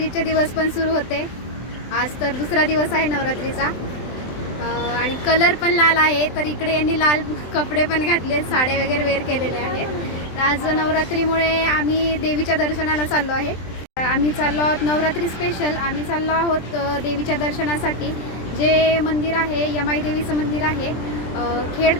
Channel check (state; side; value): late; right; 23 ms